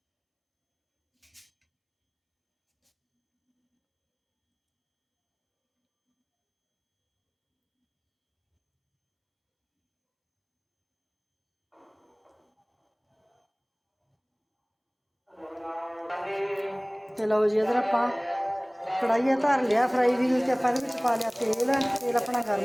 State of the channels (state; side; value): identical; both; correlation 1.00